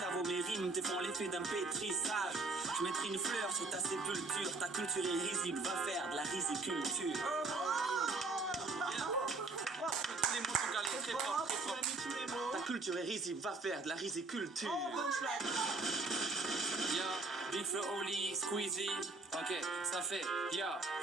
mes rimes te font l'effet d'un pétrissage. Je mettrai une fleur sur ta sépulture. Ta culture est risible, va faire de la riziculture. Tous les mots sont calés, très fort, très fort. mis tous les mots. Ta culture est risible, va faire de la riziculture. Oh, bonne flag. Yo, Big Flo Oli, Squeezie, ok, ça fait, yo.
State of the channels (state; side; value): quieter; left; 3.5 dB